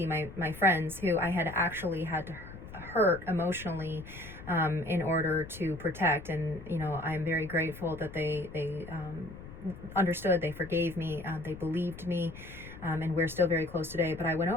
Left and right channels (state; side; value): noise; left; rumble, 15 dB below the sound